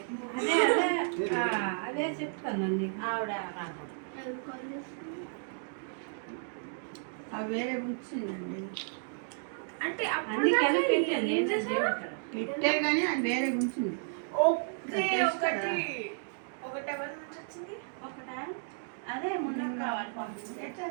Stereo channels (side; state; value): left; silent; digital silence